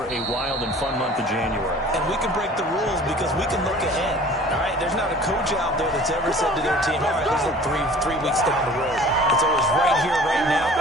a wild and fun month of January. And we can break the rules because we can look ahead. All right, there's not a coach out there that's ever said to their team, all right, let's look three weeks down the road. It's always right here, right now.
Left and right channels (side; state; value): both; normal; correlation 0.47